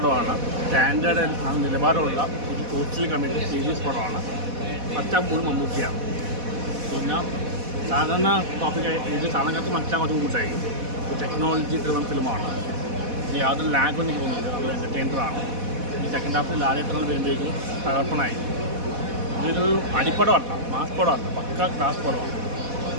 സ്റ്റാൻഡേർഡ് നിലവാരമുള്ള ഒരു സോഷ്യൽ കമ്മിറ്റി സീരീസ് പടമാണ്. മച്ചാൻ പോലും മമ്മൂട്ടിയാണ്. പിന്നെ സാധാരണ ടോപ്പിക്ക് ഇത് സാധാരണക്കാർക്ക് മനസ്സിലാകാൻ കുറച്ച് കൂട്ടായി. ഒരു ടെക്നോളജി ഡ്രിവൺ ഫിലിമാണ്. ഇനി യാതൊരു ലാഗൊന്നും എനിക്ക് തോന്നുന്നില്ല. നല്ല എൻ്റർടൈനറാണ്. ഈ സെക്കൻഡ് ഹാഫിൽ ലാലേട്ടങ്ങൾ വരുമ്പോഴേക്കും തകർപ്പണായി. ഇതൊരു അടിപ്പടമല്ല, മാസ് പടമല്ല, പക്ക ക്ലാസ് പടമാണ്.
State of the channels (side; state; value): left; late; 4.1 ms